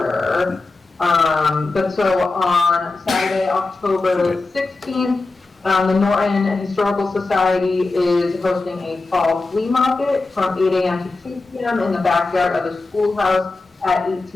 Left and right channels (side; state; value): right; quieter; 3.5 dB